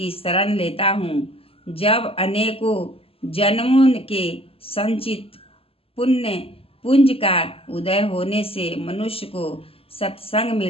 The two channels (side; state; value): right; late; 0.27 ms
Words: शरण लेता हूँ। जब अनेकों जन्मों के संचित पुण्य पुंज का उदय होने से मनुष्य को सत्संग